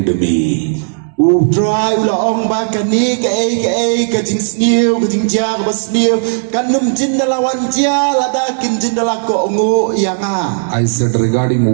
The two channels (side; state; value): left; silent; digital silence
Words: me. Utray ulaong ba kani ka jing sniu ka jing ja ka sniu kanum jindalawan ja ladakin jindala ko ungu yanga. I said, regarding